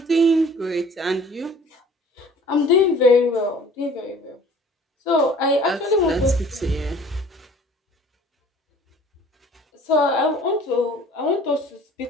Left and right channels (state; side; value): normal; both; correlation 0.50